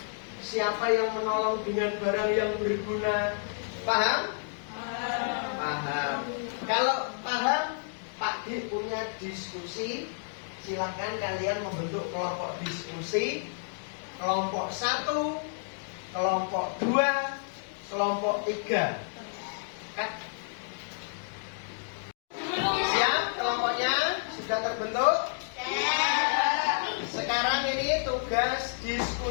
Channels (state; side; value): silent; right; digital silence